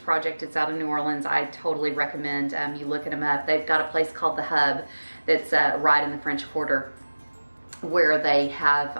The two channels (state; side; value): inverted; both; correlation -1.00